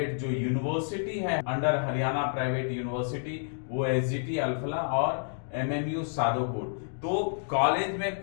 जो यूनिवर्सिटी है अंडर हरियाणा प्राइवेट यूनिवर्सिटी वो एसजीटी अल्फला और एमएमयू सादोपुर। तो कॉलेज में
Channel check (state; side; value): silent; right; digital silence